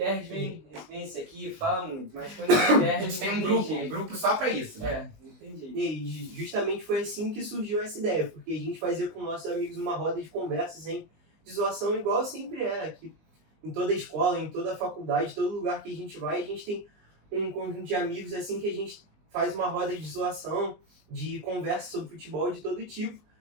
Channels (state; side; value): late; left; 19 ms